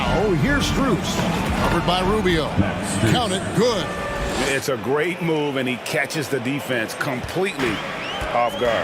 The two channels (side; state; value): both; identical; correlation 1.00